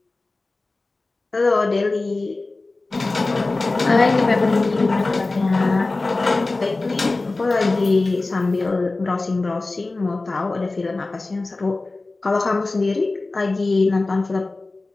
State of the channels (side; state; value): right; quieter; 3.3 dB